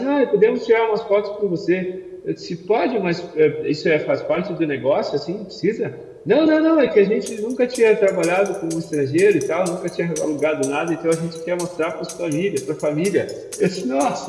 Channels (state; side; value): identical; both; correlation 1.00